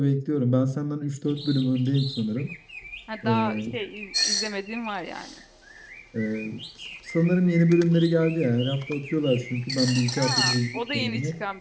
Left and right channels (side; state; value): both; identical; correlation 1.00